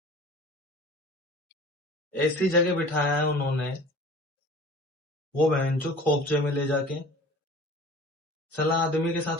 ऐसी जगह बिठाया है उन्होंने, वो बहन जो खोपचे में ले जाके, सलाह आदमी के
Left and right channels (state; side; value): normal; both; correlation 0.43